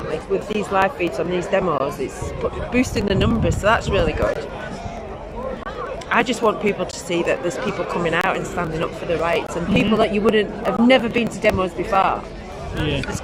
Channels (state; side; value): identical; both; correlation 1.00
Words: with these live feeds on these demos. It's boosting the numbers, so that's really good. I just want people to see that there's people coming out and standing up for the rights, and people that you have never been to demos before. Yeah. There's